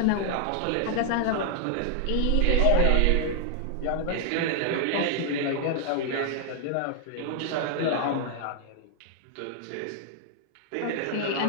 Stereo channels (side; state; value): both; different; correlation 0.00